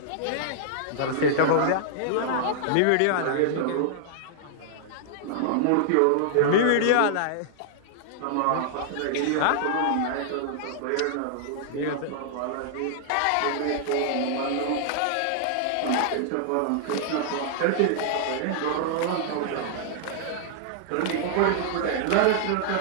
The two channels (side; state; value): both; different; correlation -0.01